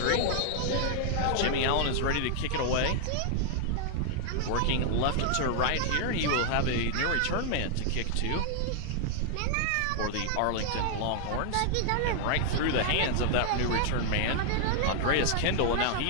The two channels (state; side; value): different; both; correlation 0.00